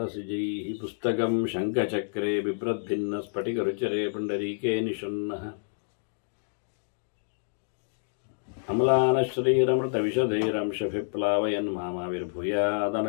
पुस्तकं शङ्खचक्रे बिभ्रद्भिन्नस्फटिकरुचिरे पुण्डरीके निषण्णः अम्लानश्रीरमृतविशदैरंशभिप्लावयन्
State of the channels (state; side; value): silent; right; digital silence